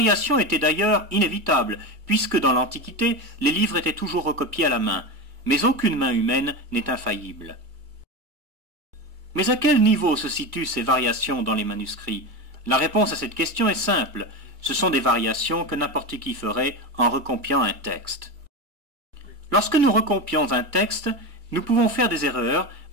étaient d'ailleurs inévitables, puisque dans l'Antiquité, les livres étaient toujours recopiés à la main. Mais aucune main humaine n'est infaillible. Mais à quel niveau se situent ces variations dans les manuscrits? La réponse à cette question est simple. Ce sont des variations que n'importe qui ferait en recopiant un texte. Lorsque nous recopions un texte, nous pouvons faire des erreurs,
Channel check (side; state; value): left; late; 2.3 ms